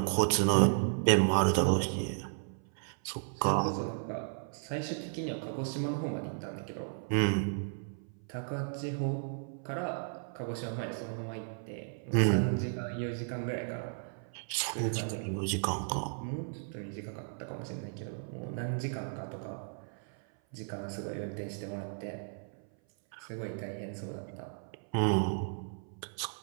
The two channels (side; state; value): left; silent; 55 dB below the other